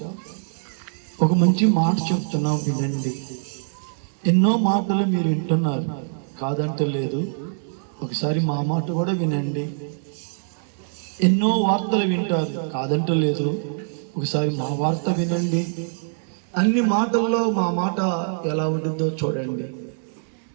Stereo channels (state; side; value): silent; left; 63 dB below the other